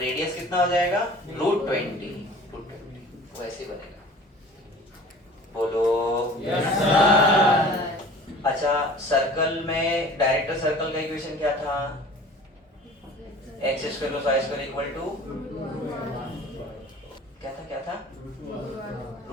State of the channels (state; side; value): normal; both; correlation 0.44